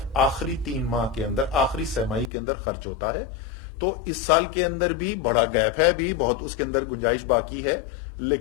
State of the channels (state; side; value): drops out; right; at 2.3 s